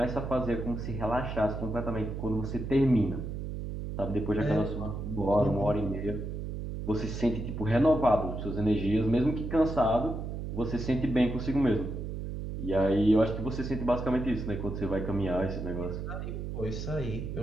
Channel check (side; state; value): right; noise; hum, 5 dB below the sound